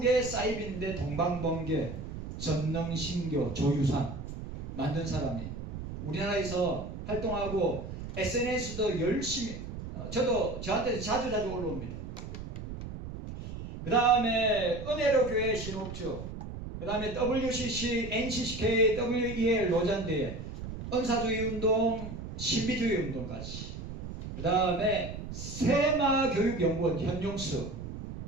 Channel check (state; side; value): noise; right; rumble, 9 dB below the sound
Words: 사이비인데 동방번개, 전능신교, 조유산 만든 사람이 우리나라에서 활동하고 SNS도 열심히 저한테 자주 올라옵니다. 그 다음에 은혜로 교회 신옥주, 그 다음에 WCC, NCCK, WEL 로잔대회, 은사주의 운동, 신비주의 운동까지. 그 다음에 세마교육연구원 현용수,